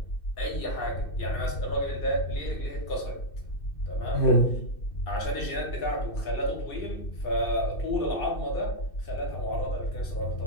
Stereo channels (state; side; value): late; right; 2.6 ms